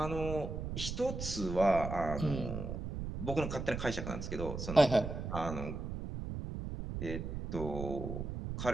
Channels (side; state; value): right; noise; rumble, 5 dB below the sound